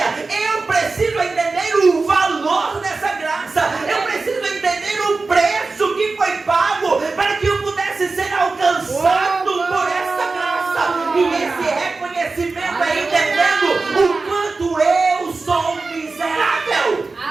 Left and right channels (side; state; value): left; quieter; 3.8 dB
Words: Eu preciso entender o valor dessa graça. Eu preciso entender o preço que foi pago para que eu pudesse ser alcançado por essa graça. E esse reconhecimento é entendendo o quanto eu sou miserável.